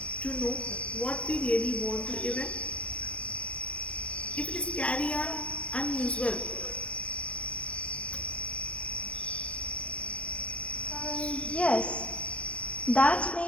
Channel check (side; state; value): right; late; 0.064 ms